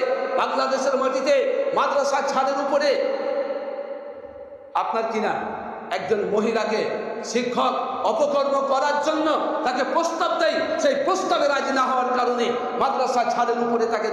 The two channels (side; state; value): both; identical; correlation 1.00